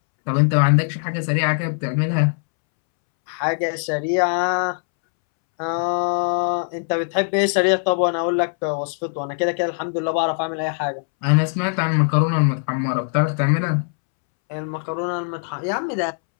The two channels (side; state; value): right; silent; 65 dB below the other